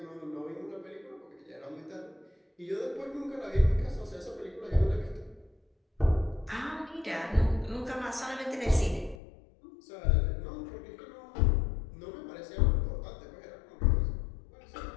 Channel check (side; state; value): right; drops out; at 9.2 s